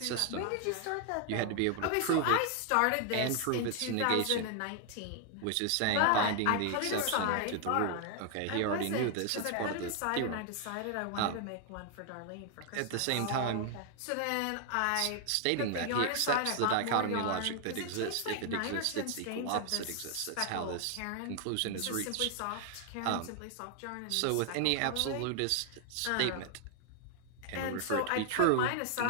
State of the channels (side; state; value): both; different; correlation 0.00